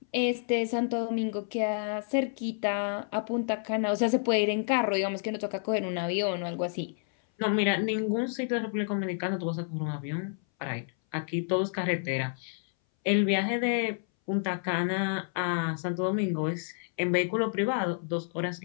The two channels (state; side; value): silent; right; 58 dB below the other